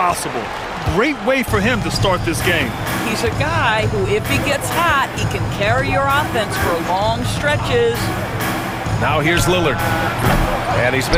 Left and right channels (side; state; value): both; identical; correlation 1.00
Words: Great way for him to start this game. He's a guy who, if he gets hot, he can carry your offense for long stretches. Now here's Lillard. And he's